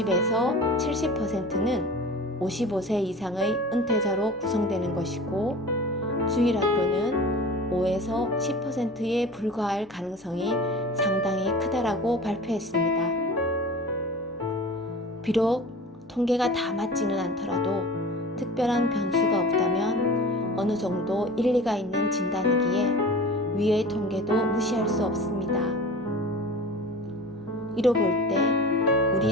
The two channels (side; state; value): both; normal; correlation 0.38